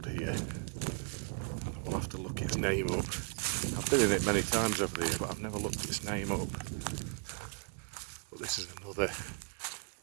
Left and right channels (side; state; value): left; quieter; 38.3 dB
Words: here. We'll have to look its name up. I've been in it many times over the year, but I've never looked its name up. But this is another